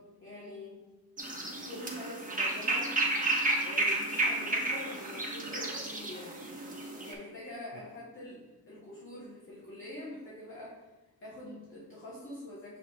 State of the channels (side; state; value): both; normal; correlation 0.13